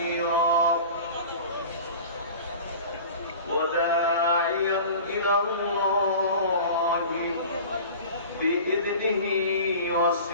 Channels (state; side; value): inverted; both; correlation -0.39